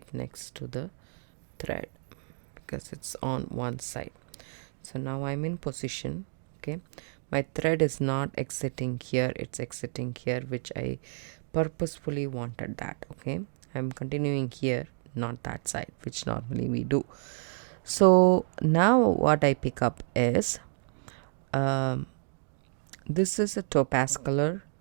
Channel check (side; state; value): left; silent; digital silence